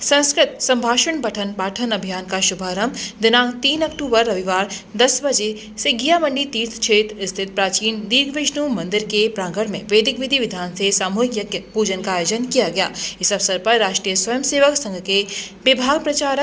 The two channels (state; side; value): identical; both; correlation 1.00